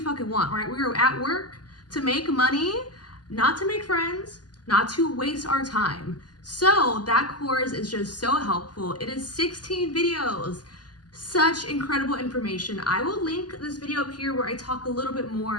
want, right? We are at work to make money, not to make friends, not to waste our time. So that course is just so helpful. It is 16 videos. Such incredible information. I will link this video up here where I talk a little bit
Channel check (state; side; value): late; right; 0.70 ms